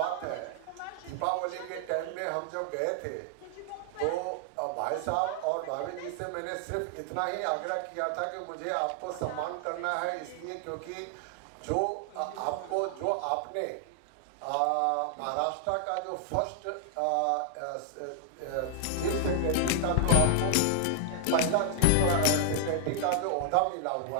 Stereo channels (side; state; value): both; different; correlation 0.00